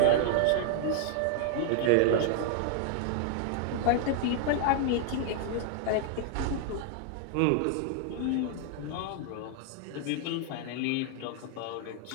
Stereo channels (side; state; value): both; different; correlation 0.00